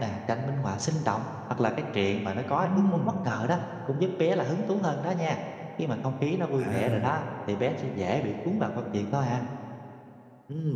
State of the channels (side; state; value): both; identical; correlation 1.00